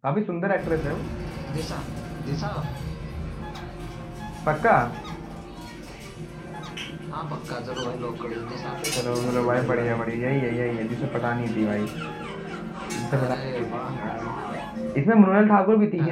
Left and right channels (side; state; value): both; identical; correlation 1.00